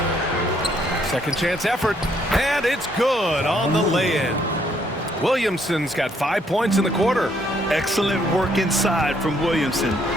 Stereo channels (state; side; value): normal; both; correlation 0.69